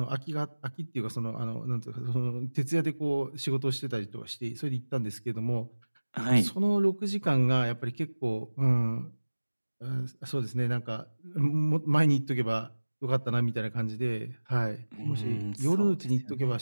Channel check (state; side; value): inverted; both; correlation -1.00